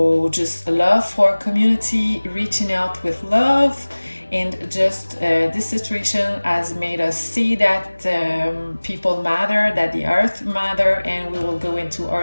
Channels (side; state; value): both; inverted; correlation -1.00